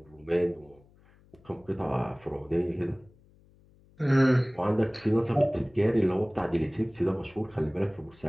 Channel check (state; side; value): noise; left; hum, 29 dB below the sound